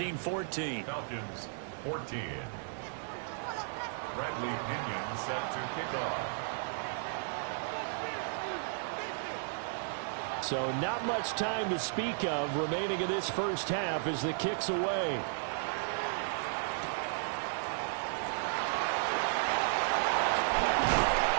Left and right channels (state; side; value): silent; left; digital silence